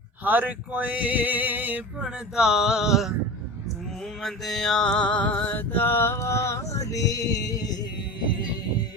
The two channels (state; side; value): normal; both; correlation 0.32